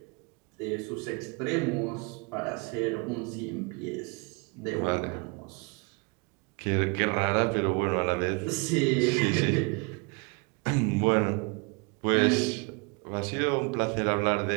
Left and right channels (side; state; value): left; quieter; 31.0 dB